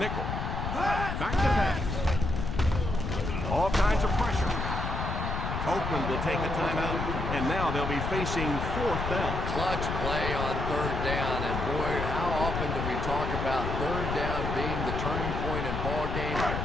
Back to pass. All kinds of pressure. Oakland will take a timeout, and now they'll be facing 4th down. Clutch play on 3rd down, and boy, how often do we talk about 3rd down being the turning point in ball games?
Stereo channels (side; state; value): left; noise; rumble, 3 dB below the sound